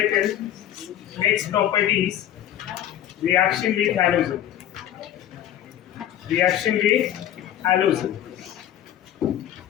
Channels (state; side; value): quieter; right; 11.4 dB